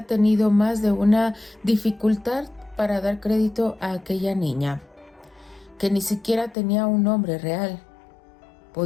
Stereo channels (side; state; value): right; drops out; at 6.6 s